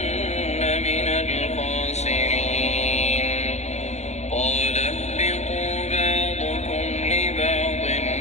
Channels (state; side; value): late; right; 0.32 ms